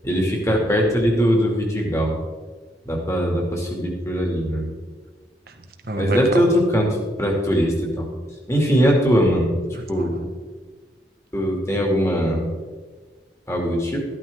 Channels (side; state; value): both; normal; correlation 0.75